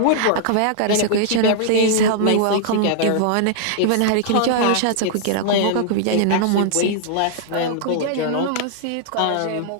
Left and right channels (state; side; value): different; both; correlation -0.01